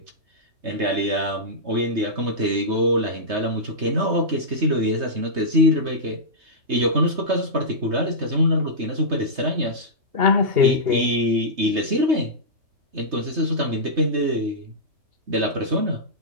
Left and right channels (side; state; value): left; late; 3.2 ms